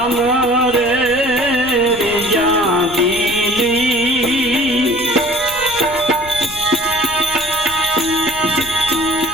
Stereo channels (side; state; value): left; noise; rumble, 18 dB below the sound